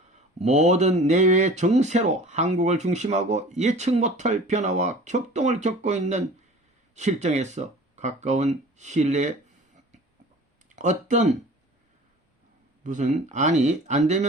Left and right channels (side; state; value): both; normal; correlation 0.43